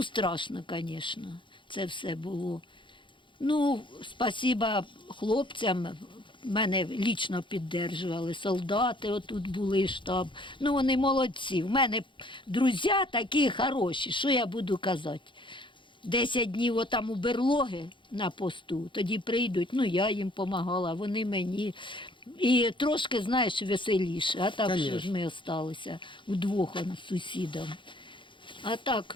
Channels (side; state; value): right; late; 0.24 ms